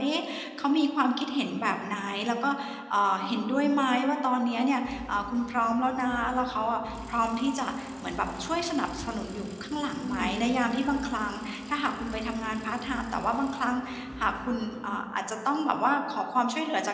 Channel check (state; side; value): identical; both; correlation 1.00